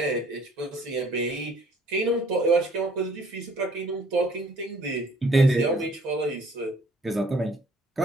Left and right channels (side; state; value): both; normal; correlation 0.58